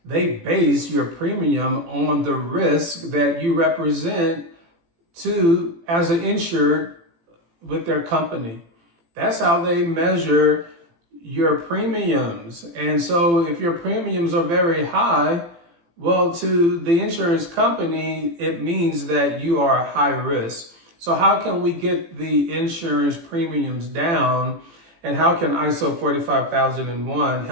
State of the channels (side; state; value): left; late; 18 ms